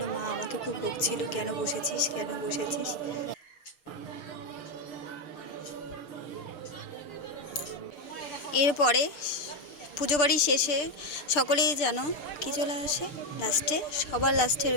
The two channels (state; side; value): late; right; 6.7 ms